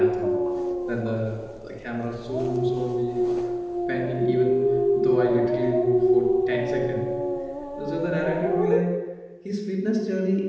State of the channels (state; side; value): identical; both; correlation 1.00